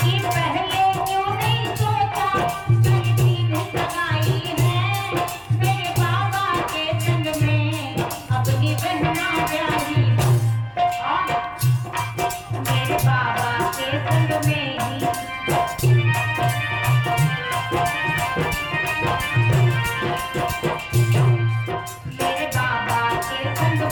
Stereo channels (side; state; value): both; identical; correlation 1.00